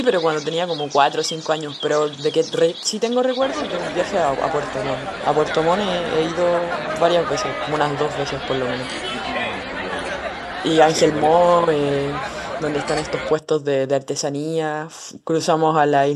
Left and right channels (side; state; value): both; identical; correlation 1.00